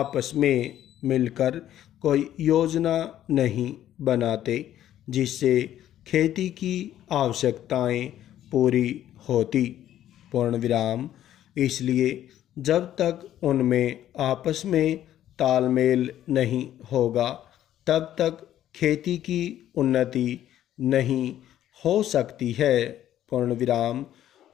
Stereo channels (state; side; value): quieter; right; 11.9 dB